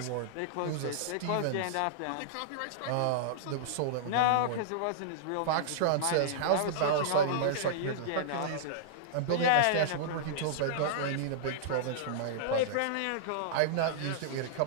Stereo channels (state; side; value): different; both; correlation -0.02